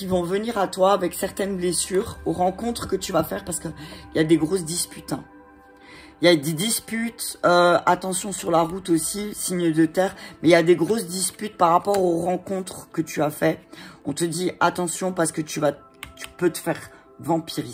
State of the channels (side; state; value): both; identical; correlation 1.00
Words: vont venir à toi avec certaines blessures, aux rencontres que tu vas faire parce qu'il y a des grosses disputes. Hein. Il y a des disputes, attention sur la route aussi, signe de terre, mais il y a des grosses disputes par rapport aux rencontres que tu as fait. On te dit attention parce que tu peux te faire